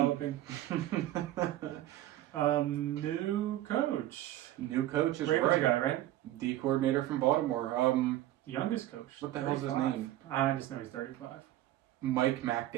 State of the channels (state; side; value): quieter; left; 14.2 dB